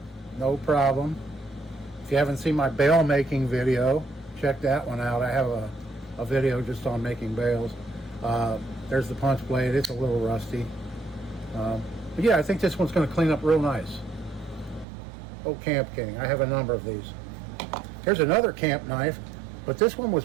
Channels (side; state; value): left; drops out; at 14.9 s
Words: no problem. If you haven't seen my bail making video, check that one out. I have a video just on making bails. There's the punch blade. It's a little rusty, but yeah, I think this one's going to clean up real nice. Oh, Camp King. I have a number of these. Here's another camp knife, but this one